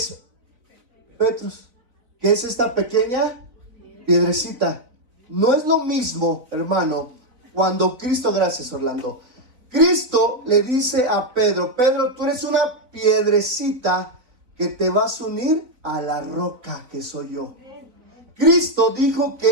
Petrus, que es esta pequeña piedrecita. No es lo mismo, hermano, cuando Cristo, gracias Orlando, Cristo le dice a Pedro, Pedro, tú eres una piedrecita que te vas a unir a la roca que soy yo. Cristo dijo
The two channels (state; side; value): late; left; 3.9 ms